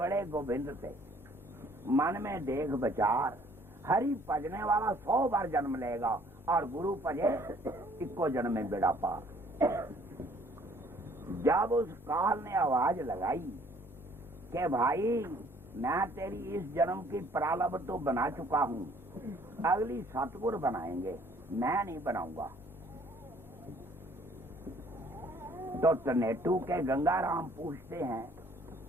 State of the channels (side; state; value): both; normal; correlation 0.59